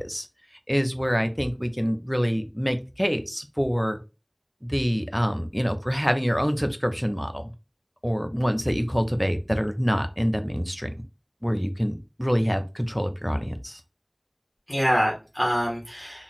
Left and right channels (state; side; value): identical; both; correlation 1.00